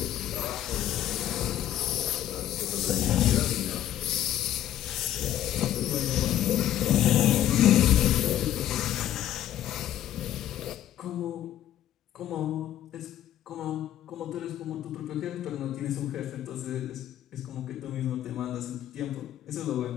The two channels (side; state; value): right; quieter; 12.0 dB